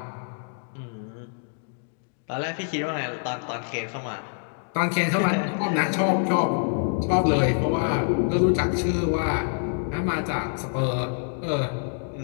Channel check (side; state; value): right; silent; 61 dB below the other